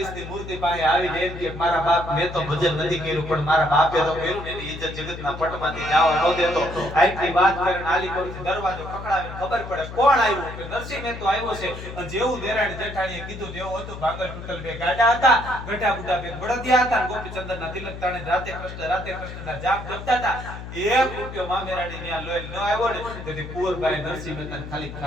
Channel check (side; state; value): left; noise; hum, 10 dB below the sound